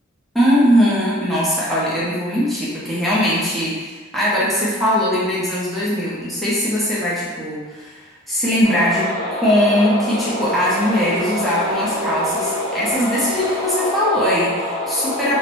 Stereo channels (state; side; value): normal; both; correlation 0.45